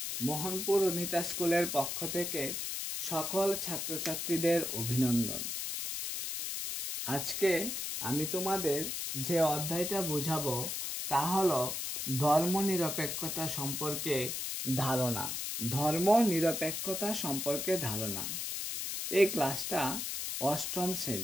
মোহনপুর অনিতা স্কুলের পক্ষ থেকে সকল ছাত্রছাত্রীদের অভিনন্দন। আজকে আমি তোমাদের যে অধ্যায়টা বোঝাবো তা হলো ধর্মনিরপেক্ষতা সম্পর্কে ধারণা। ধর্মনিরপেক্ষতা সম্পর্কে ধারণা। এই ক্লাসটা অষ্টম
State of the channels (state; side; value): noise; left; hiss, 3 dB below the sound